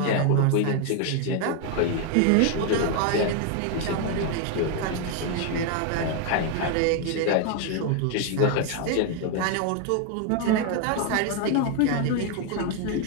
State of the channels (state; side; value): different; both; correlation 0.01